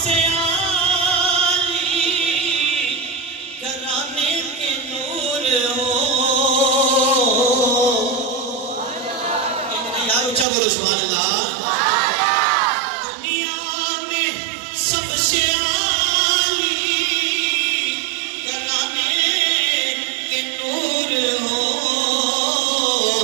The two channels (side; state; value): left; drops out; at 10.5 s